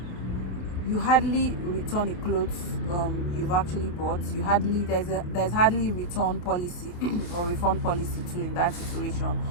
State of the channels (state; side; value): late; right; 28 ms